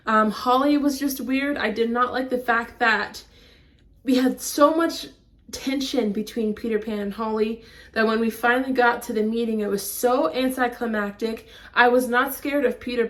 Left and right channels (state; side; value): identical; both; correlation 1.00